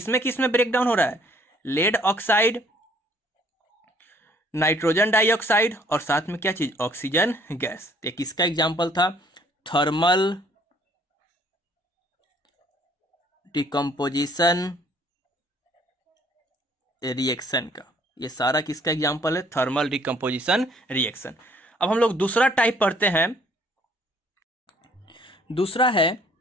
ब्रेक डाउन हो रहा है, लेड ऑक्साइड, नाइट्रोजन डाइऑक्साइड और साथ में क्या चीज, ऑक्सीजन गैस। तो किसका एग्जाम्पल था, थर्मल डिकम्पोजिशन रिएक्शन का। ये सारा किसका एग्जाम्पल है, थर्मल डिकम्पोजिशन रिएक्शन। अब हम लोग दूसरा टाइप पढ़ते हैं। दूसरा है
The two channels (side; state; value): both; normal; correlation 0.60